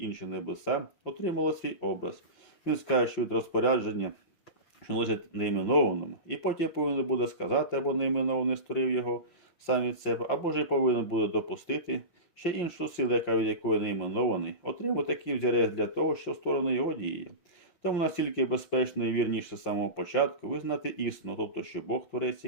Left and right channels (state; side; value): late; right; 5.7 ms